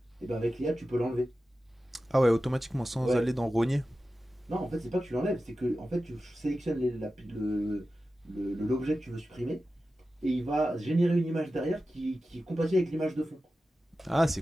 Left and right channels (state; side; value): normal; both; correlation 0.93